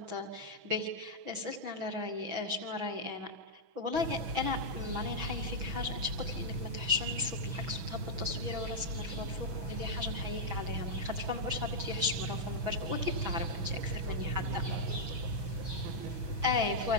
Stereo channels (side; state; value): left; late; 6.1 ms